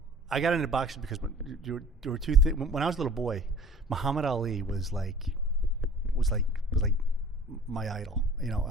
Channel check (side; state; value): both; normal; correlation 0.47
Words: I got into boxing because there were two things. When I was a little boy, Muhammad Ali was like my idol.